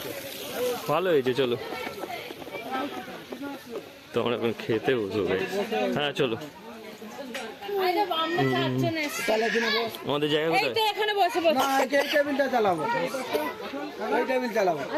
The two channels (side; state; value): both; identical; correlation 1.00